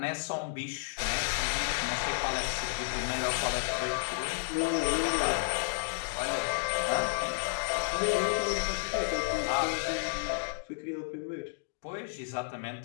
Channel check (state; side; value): silent; right; digital silence